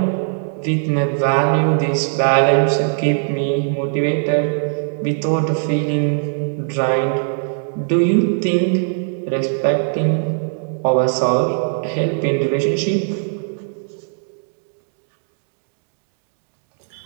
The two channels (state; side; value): silent; left; digital silence